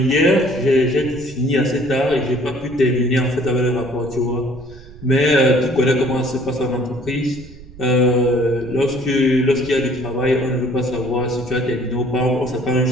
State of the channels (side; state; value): right; noise; rumble, 19 dB below the sound